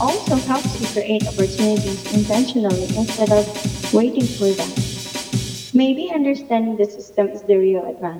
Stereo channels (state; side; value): identical; both; correlation 1.00